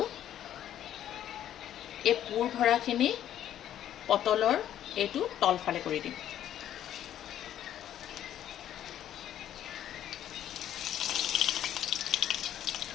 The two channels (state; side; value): quieter; right; 11.2 dB